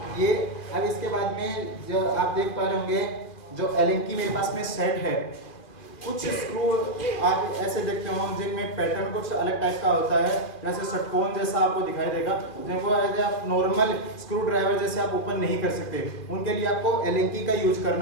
ये अब इसके बाद में जो आप देख पा रहे होंगे जो एलेंकी मेरे पास में सेट है। कुछ स्क्रू आप ऐसे देखते हो जिनमें पैटर्न कुछ अलग टाइप का होता है, जैसे षटकोण जैसा आपको दिखाई देगा, जिनको ऐसे आप नॉर्मल स्क्रू ड्राइवर जैसे आप ओपन नहीं कर सकते। उनके लिए आपको एलेंकी का यूज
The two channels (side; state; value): right; late; 2.4 ms